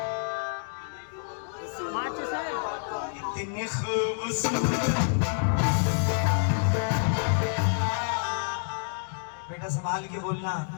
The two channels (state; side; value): silent; right; digital silence